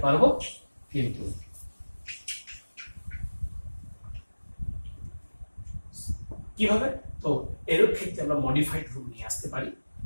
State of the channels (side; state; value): both; inverted; correlation -1.00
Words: পারবো, কিন্তু কিভাবে? তো এর ক্ষেত্রে আমরা মডিফাইড রূপ নিয়ে আসতে পারি,